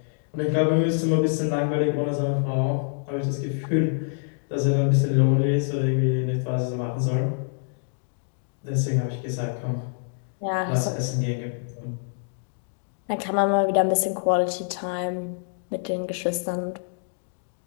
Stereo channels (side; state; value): right; silent; digital silence